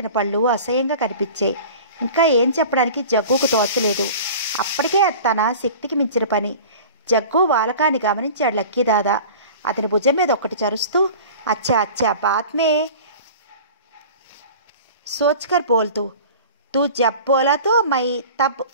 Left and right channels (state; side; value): inverted; both; correlation -0.39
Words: పళ్ళు అసహ్యంగా కనిపించాయి. ఇంకా ఏం చెప్పడానికి జగ్గుకు తోచలేదు. అప్పటికే తన శక్తికి మించిన పని. జగ్గు వాలకాన్ని గమనించాడు లక్కీ దాదా. అతని భుజం మీద ఒక్కటి చరుస్తూ, అచ్చా అచ్చా బాత్ మే సోచ్కర్ బోల్తూ, తూ జబ్ బోలా తో మై తబ్